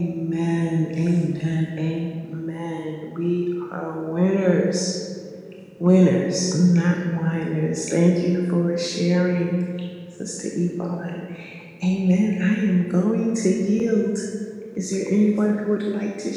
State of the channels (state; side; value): identical; both; correlation 1.00